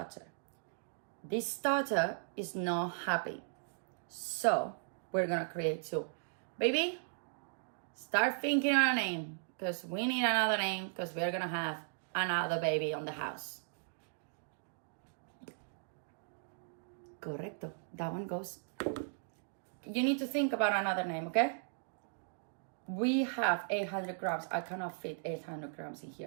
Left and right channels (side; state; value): left; silent; digital silence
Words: This starter is not happy, so we're gonna create two. Baby, start thinking on a name, because we need another name, because we're gonna have another baby on the house. Correcto. That one goes. You need to think about another name, okay? We have 800 grams. I cannot fit 800 grams in